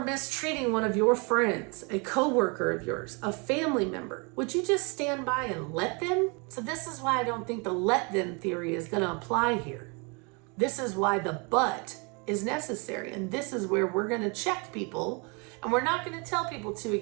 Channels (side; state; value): left; quieter; 31.9 dB